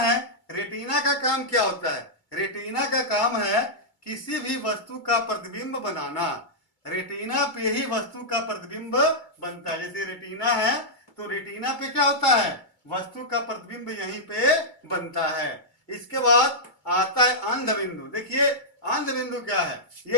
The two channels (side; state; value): right; late; 2.3 ms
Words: रेटिना का काम क्या होता है, रेटिना का काम है किसी भी वस्तु का प्रतिबिंब बनाना। रेटिना पे ही वस्तु का प्रतिबिंब बनता है। जैसे रेटिना है तो रेटिना पे क्या होता है, वस्तु का प्रतिबिंब यहीं पे बनता है। इसके बाद आता है अंध बिंदु। देखिए अंध बिंदु क्या है,